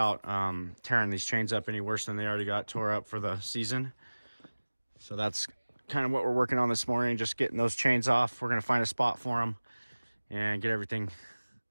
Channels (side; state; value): both; inverted; correlation -1.00